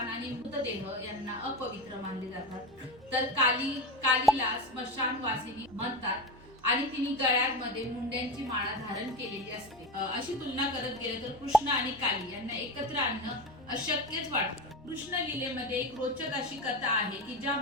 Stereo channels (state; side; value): normal; both; correlation 0.21